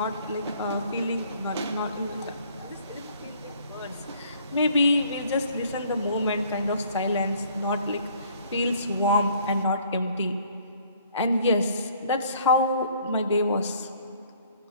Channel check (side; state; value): both; inverted; correlation -0.59